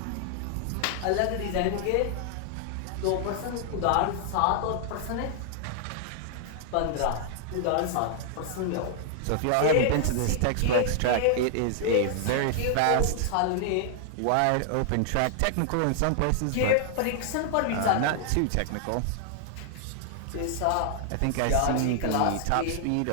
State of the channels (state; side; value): different; both; correlation -0.01